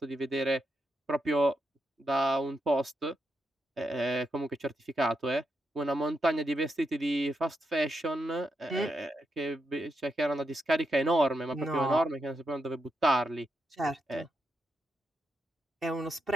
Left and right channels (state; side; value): normal; both; correlation 0.84